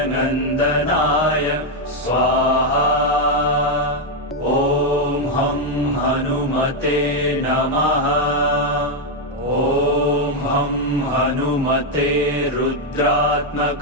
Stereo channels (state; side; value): normal; both; correlation 0.02